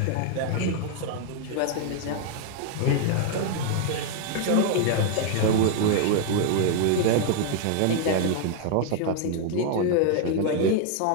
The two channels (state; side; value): different; both; correlation 0.00